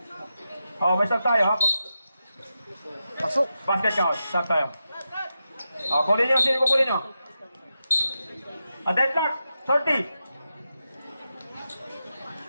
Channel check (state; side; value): inverted; both; correlation -0.89